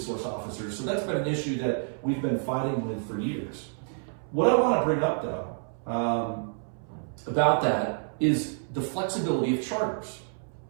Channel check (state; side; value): silent; left; 59 dB below the other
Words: officers. So that's been an issue that we've been fighting with for years. What I want to bring up though about that is the flexibility of charters.